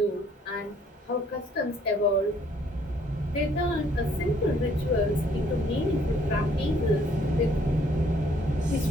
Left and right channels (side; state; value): both; normal; correlation 0.63